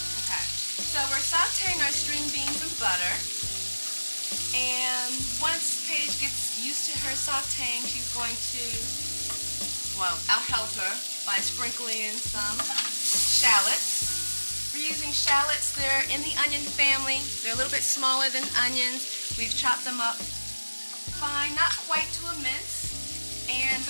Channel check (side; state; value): both; inverted; correlation -1.00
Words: Okay. So we're sauteing our string beans in butter, and once Paige gets used to her sauteing, she's going to well, I'll help her by sprinkling in some shallots. We're using shallots. They're in the onion family. They're a little bit smaller than onions. We've chopped them up fine, not quite to a mince. And